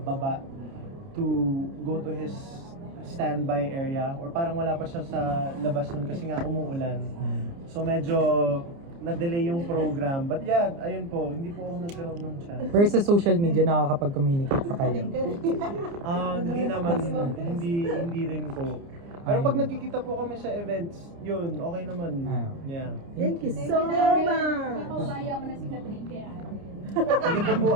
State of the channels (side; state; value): left; late; 29 ms